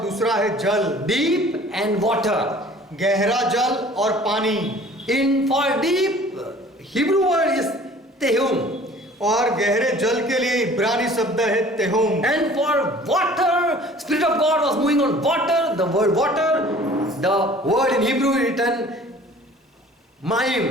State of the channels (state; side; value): normal; both; correlation 0.49